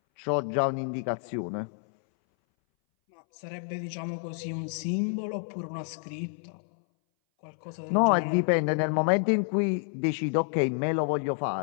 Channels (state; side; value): silent; right; 59 dB below the other